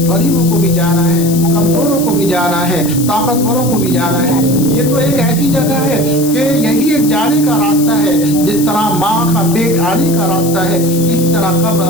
غریبوں کو بھی جانا ہے، کمزوروں کو بھی جانا ہے، طاقتوروں کو بھی جانا ہے۔ یہ تو ایک ایسی جگہ ہے کہ یہی ایک جانے کا راستہ ہے، جس طرح ماں کا پیٹ آنے کا راستہ ہے، اس طرح قبر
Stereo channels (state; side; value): noise; left; hiss, 9 dB below the sound